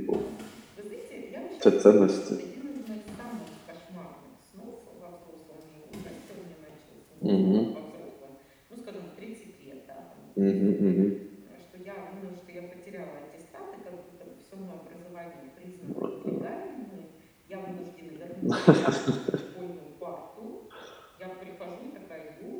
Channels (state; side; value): identical; both; correlation 1.00